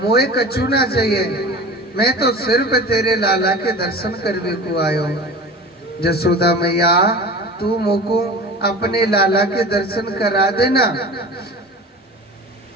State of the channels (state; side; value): normal; both; correlation 0.36